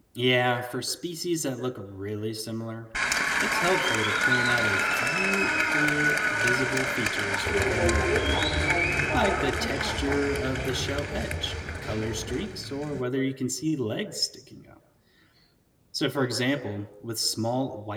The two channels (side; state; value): both; identical; correlation 1.00